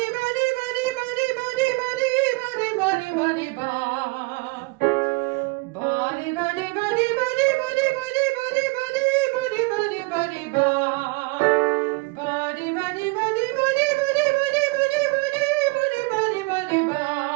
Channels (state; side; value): quieter; left; 28.7 dB